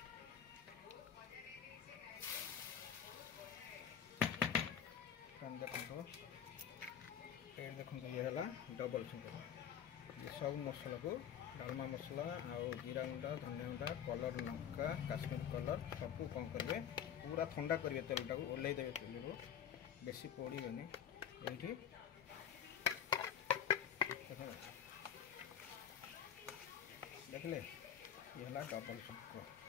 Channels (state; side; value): quieter; right; 8.7 dB